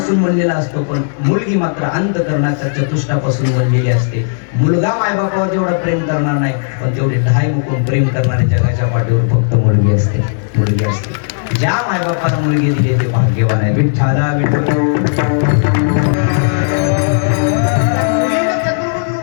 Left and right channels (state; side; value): silent; right; digital silence